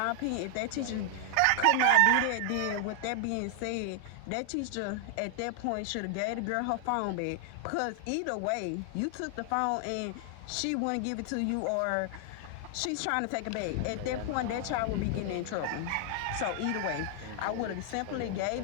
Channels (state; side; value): different; both; correlation 0.00